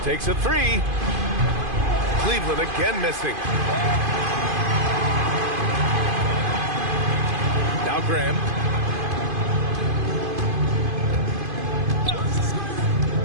Takes a three. Cleveland again missing. Now Graham.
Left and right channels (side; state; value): left; late; 2.5 ms